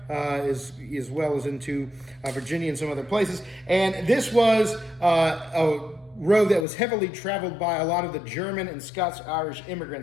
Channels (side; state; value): right; drops out; at 6.7 s